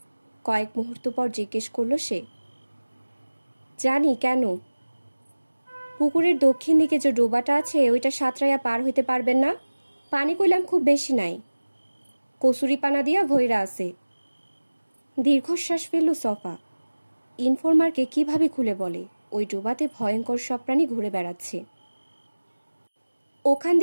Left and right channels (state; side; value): inverted; both; correlation -1.00